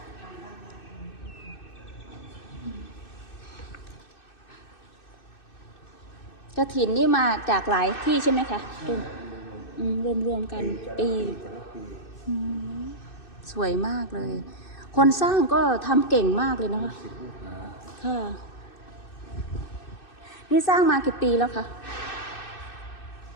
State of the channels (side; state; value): right; late; 2.6 ms